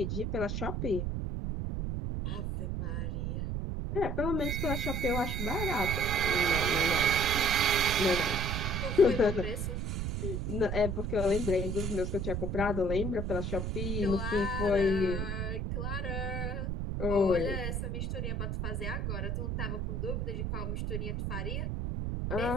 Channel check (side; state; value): right; noise; rumble, 1 dB below the sound